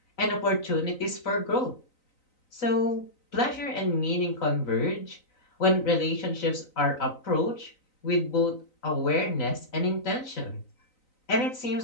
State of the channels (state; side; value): late; right; 3.9 ms